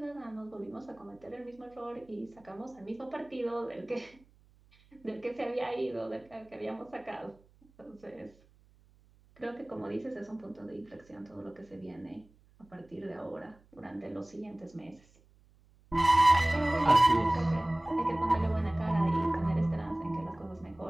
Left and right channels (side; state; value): right; noise; hum, 29 dB below the sound